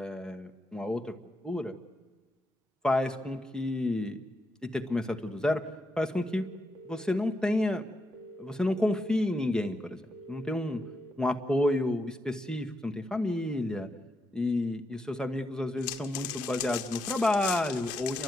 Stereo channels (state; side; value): normal; both; correlation 0.83